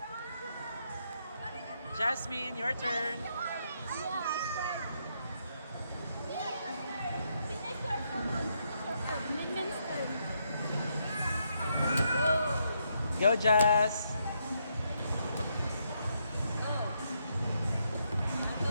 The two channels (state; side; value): inverted; both; correlation -0.78